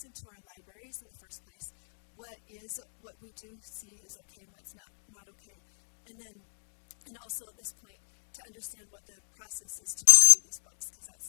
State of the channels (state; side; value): silent; right; digital silence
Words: into our libraries in the first place, what we do see is okay and what's not okay. And also at this point, to understand what the process is to review these books, because